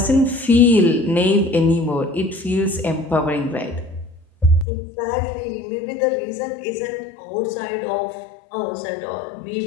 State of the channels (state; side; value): drops out; right; at 4.7 s